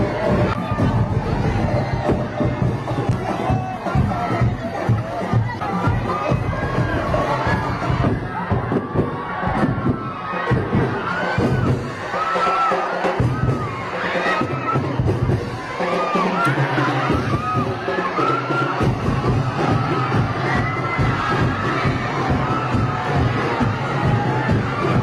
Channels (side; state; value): both; identical; correlation 1.00